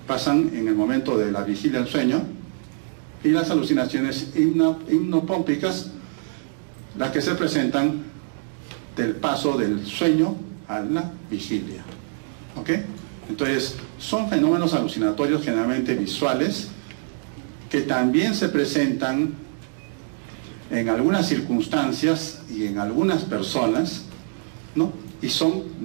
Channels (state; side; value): silent; left; digital silence